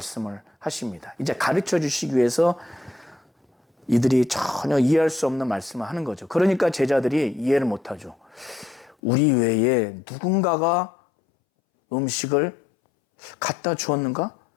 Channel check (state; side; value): drops out; right; at 9.0 s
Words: 하십니다. 이제 가르쳐 주시기 위해서 이들이 전혀 이해할 수 없는 말씀을 하는 거죠. 그러니까 제자들이 이해를 못하죠. 우리 외에 누군가가 음식을 갖다 주었는가?